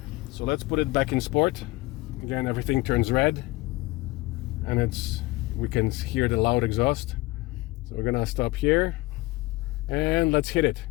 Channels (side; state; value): right; quieter; 20.9 dB